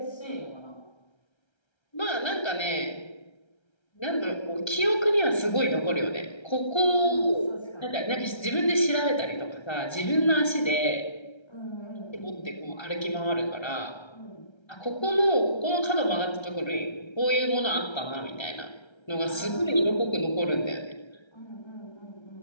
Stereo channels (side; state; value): right; late; 1.3 ms